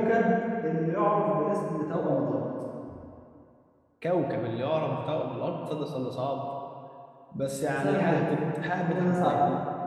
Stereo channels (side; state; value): both; identical; correlation 1.00